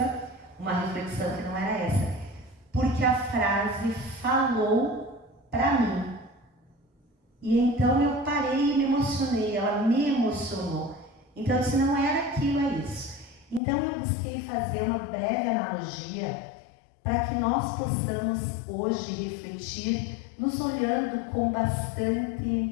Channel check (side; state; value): right; drops out; at 13.6 s